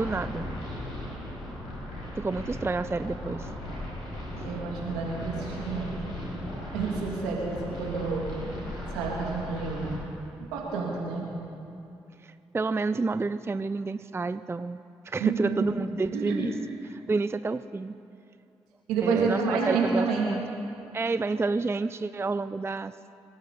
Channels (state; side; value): quieter; left; 3.2 dB